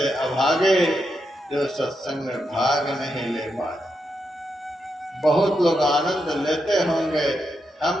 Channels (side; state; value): both; normal; correlation 0.84